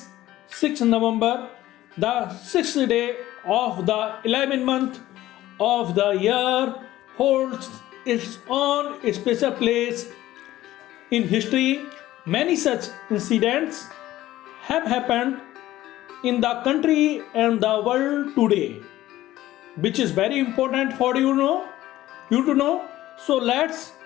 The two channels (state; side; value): quieter; right; 15.1 dB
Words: 6th November, the 6th day of the 11th month of the year holds its own special place in history. Many such incidents have happened in the country and the world today, which is very important for you to know. So let's